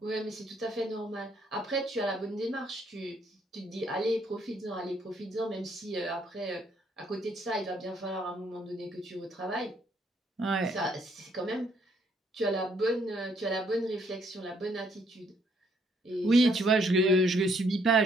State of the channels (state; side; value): normal; both; correlation 0.69